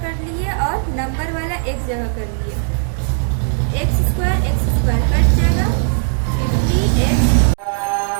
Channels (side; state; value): left; silent; digital silence